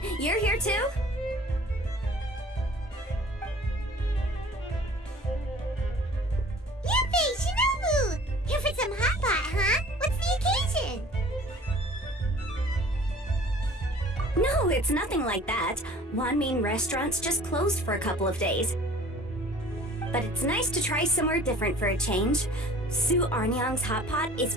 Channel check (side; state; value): both; normal; correlation 0.49